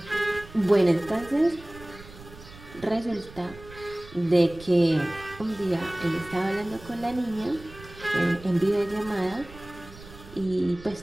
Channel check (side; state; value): right; noise; rumble, 18 dB below the sound